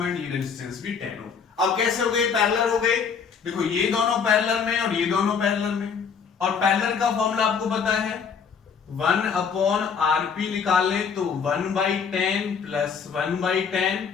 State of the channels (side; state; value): right; quieter; 6.3 dB